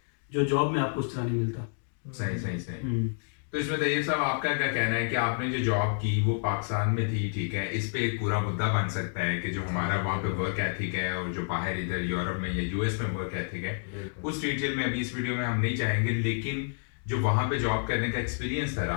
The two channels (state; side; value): silent; right; digital silence